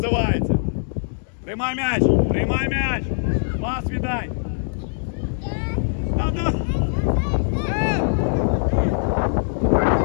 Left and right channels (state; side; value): silent; right; 64 dB below the other